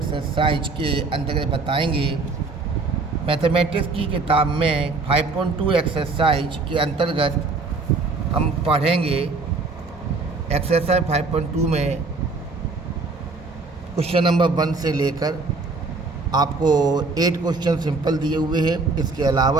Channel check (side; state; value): left; quieter; 3.8 dB